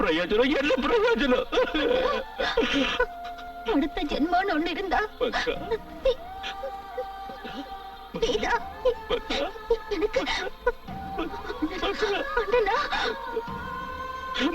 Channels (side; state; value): both; identical; correlation 1.00